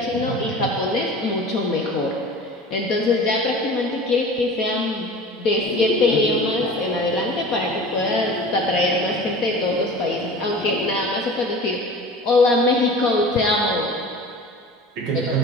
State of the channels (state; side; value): normal; both; correlation 0.39